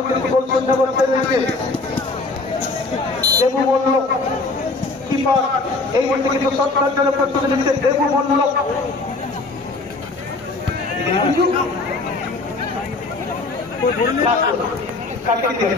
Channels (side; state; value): right; quieter; 3.5 dB